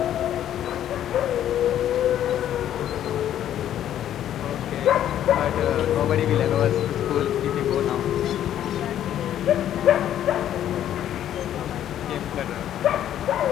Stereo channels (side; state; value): right; quieter; 11.1 dB